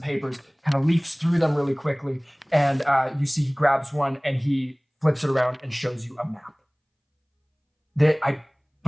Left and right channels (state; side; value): identical; both; correlation 1.00